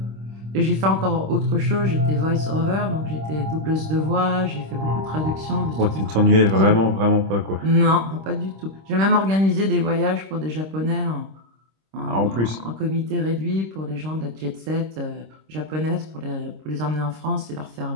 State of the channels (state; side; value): late; left; 26 ms